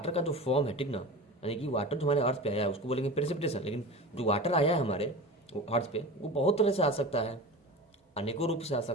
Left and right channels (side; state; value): both; normal; correlation 0.31